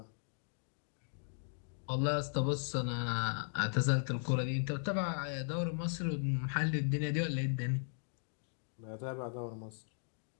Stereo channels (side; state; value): right; silent; digital silence